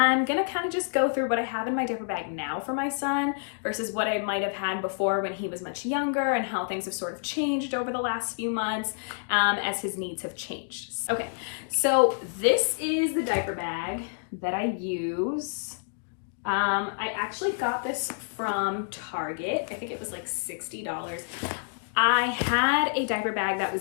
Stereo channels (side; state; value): right; silent; digital silence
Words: gonna kind of just go through what I have in my diaper bag now for my son versus what I might have had before when he was much younger and how things have sort of changed over the last few months as his needs have changed. Okay, so this is the diaper bag that I use. I actually got this from Target. I think it was like $60. I had a diaper bag that